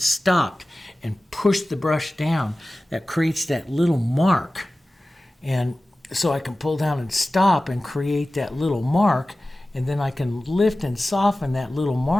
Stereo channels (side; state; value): both; normal; correlation 0.96